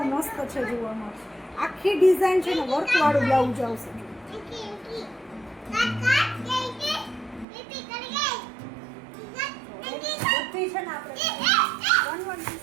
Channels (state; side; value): drops out; left; at 7.5 s